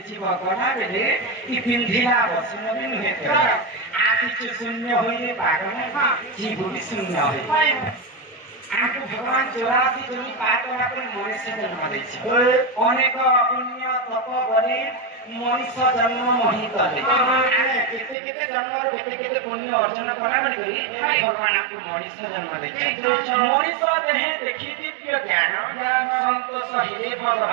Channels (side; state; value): left; drops out; at 18.2 s